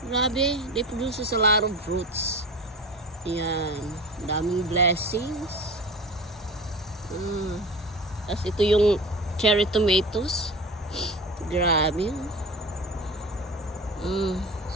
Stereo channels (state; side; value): normal; both; correlation 0.34